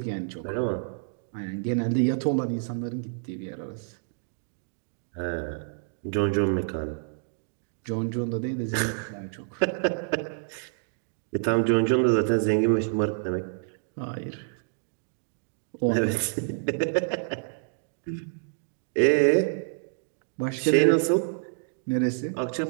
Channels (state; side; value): silent; left; digital silence